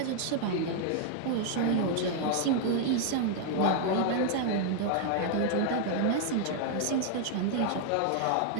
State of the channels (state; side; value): different; both; correlation 0.00